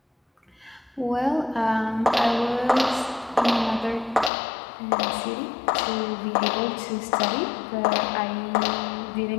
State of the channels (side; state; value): right; drops out; at 4.3 s